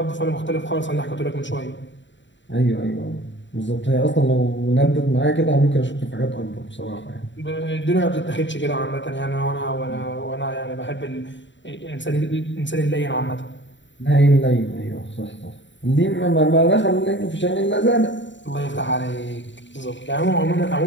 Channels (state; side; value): late; right; 0.54 ms